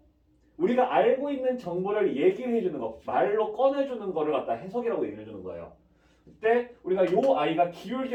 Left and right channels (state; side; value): identical; both; correlation 1.00